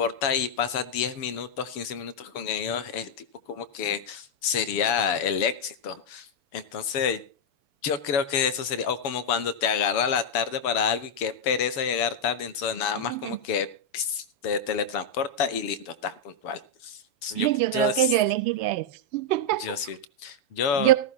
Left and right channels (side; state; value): right; late; 7.0 ms